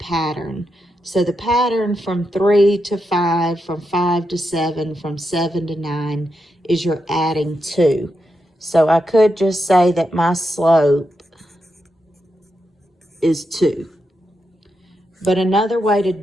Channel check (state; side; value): normal; both; correlation 0.85